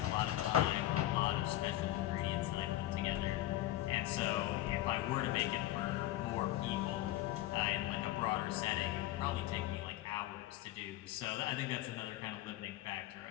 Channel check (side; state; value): right; quieter; 15.0 dB